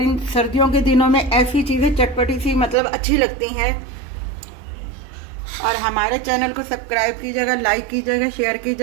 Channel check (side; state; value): left; drops out; at 2.8 s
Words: इन सर्दियों के दिनों में ऐसी चीज़ें चटपटी सी मतलब अच्छी लगती हैं। और हमारे चैनल को सब्सक्राइब कीजिएगा, लाइक कीजिएगा, शेयर